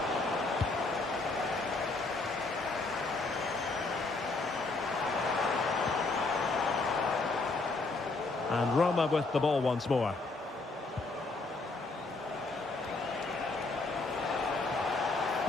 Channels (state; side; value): quieter; right; 3.5 dB